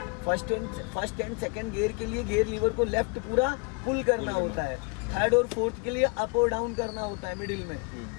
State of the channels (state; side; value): quieter; right; 32.7 dB